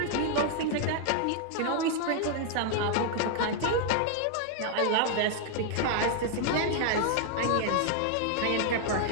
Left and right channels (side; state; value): both; different; correlation 0.00